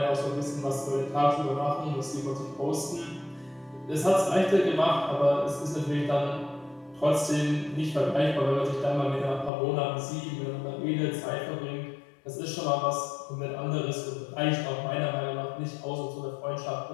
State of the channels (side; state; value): right; drops out; at 9.5 s